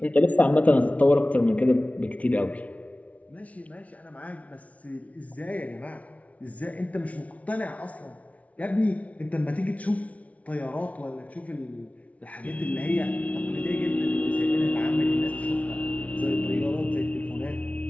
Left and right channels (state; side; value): late; right; 0.067 ms